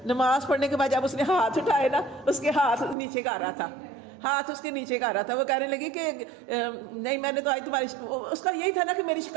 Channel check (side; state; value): left; drops out; at 3.0 s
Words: نماز پڑھنے کے بعد جب اس نے ہاتھ اٹھائے نا, اس کے ہاتھ نیچے کر رہا تھا, ہاتھ اس کے نیچے کر رہا تھا. وہ کہنے لگی کہ نہیں میں نے تو آج تمہاری, اس کا یہی تھا نا کہ میری